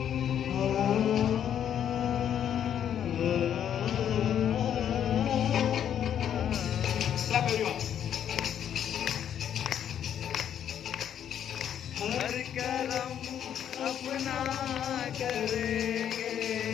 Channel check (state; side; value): quieter; right; 9.5 dB